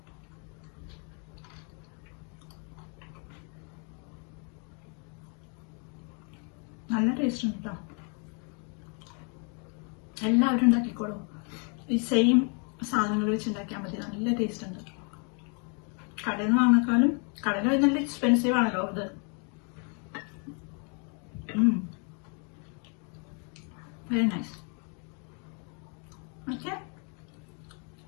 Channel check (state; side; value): quieter; right; 38.1 dB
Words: നല്ല ടേസ്റ്റ് ഉണ്ട് കേട്ടോ. എല്ലാവരും ഉണ്ടാക്കിക്കോളൂ. ഈ സെയിം സാധനങ്ങൾ വെച്ച് ഉണ്ടാക്കിയാൽ മതി. നല്ല ടേസ്റ്റ് ഉണ്ട്. കടയിൽ നിന്ന് വാങ്ങിക്കാളും, കടയിൽ നല്ല എക്സ്പെൻസീവ് ആണല്ലോ ഇത്. Very nice. Okay,